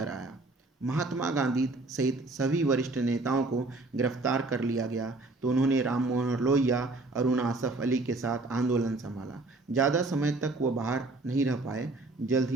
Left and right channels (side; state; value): left; quieter; 3.1 dB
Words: आया। महात्मा गांधी सहित सभी वरिष्ठ नेताओं को गिरफ्तार कर लिया गया तो उन्होंने राम मनोहर लोहिया, अरुण आसफ अली के साथ आंदोलन संभाला। ज़्यादा समय तक वो बाहर नहीं रह पाए। जल्द